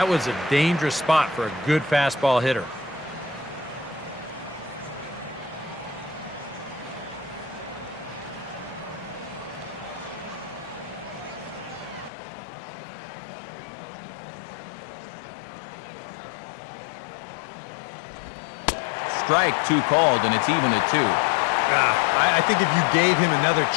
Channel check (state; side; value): drops out; right; at 12.1 s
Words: was a dangerous spot for a good fastball hitter. Strike 2 called, and it's even at 2. I think if you gave him another